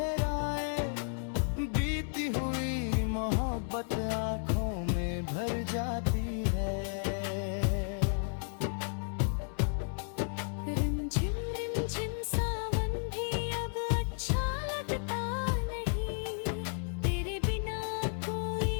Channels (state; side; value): silent; right; digital silence